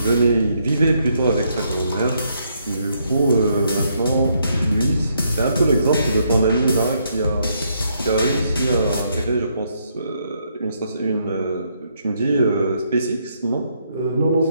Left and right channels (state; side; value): inverted; both; correlation -0.74